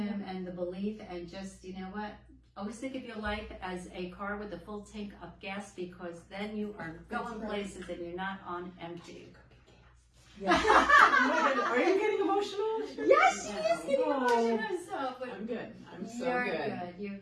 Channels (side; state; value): both; identical; correlation 1.00